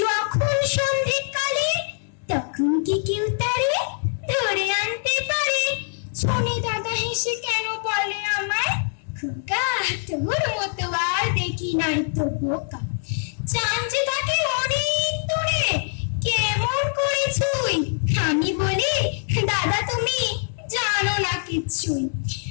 যখন সন্ধ্যেকালে, তখন কি কেউ তারে ধরে আনতে পারে? শুনে দাদা হেসে কেন বলে আমায়, খোকা তোর মতো আর দেখি নাই তো বোকা। চাঁদ যে থাকে অনেক দূরে, কেমন করে ছুঁই? আমি বলি দাদা তুমি জানো না কিচ্ছুই।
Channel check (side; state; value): right; silent; digital silence